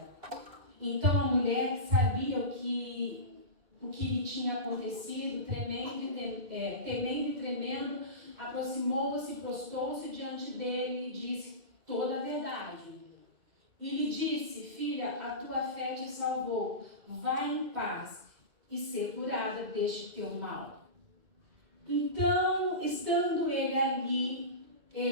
Então a mulher, que sabia o que lhe tinha acontecido, temendo e tremendo, aproximou-se e prostou-se diante dele e disse toda a verdade. E lhe disse: filha, a tua fé te salvou, vai em paz e ser curada deste teu mal. Então, estando ele ali,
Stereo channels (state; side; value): late; left; 2.1 ms